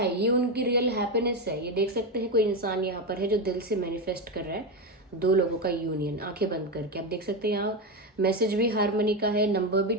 ये उनकी रियल हैप्पीनेस है। ये देख सकते हैं कोई इंसान यहाँ पर है जो दिल से मैनिफेस्ट कर रहा है दो लोगों का यूनियन, आंखें बंद करके। आप देख सकते हैं यहाँ मैसेज भी हारमोनी का है, नंबर भी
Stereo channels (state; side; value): normal; both; correlation 0.13